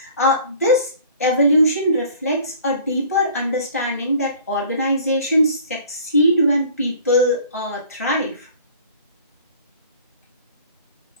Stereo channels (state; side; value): inverted; both; correlation -0.49